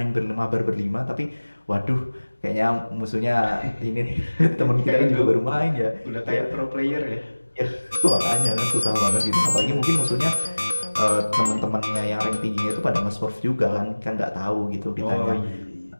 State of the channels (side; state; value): both; inverted; correlation -1.00